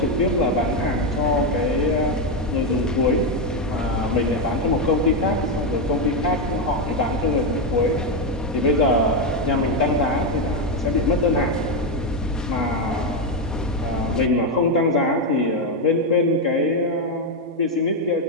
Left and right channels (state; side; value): normal; both; correlation 0.06